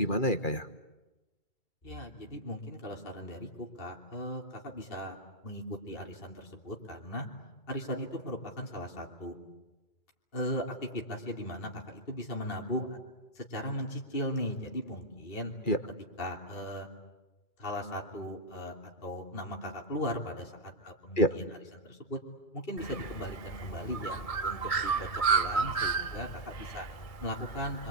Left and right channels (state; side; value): late; right; 2.3 ms